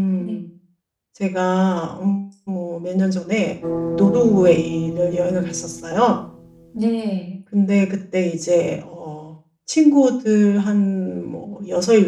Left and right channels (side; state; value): both; identical; correlation 1.00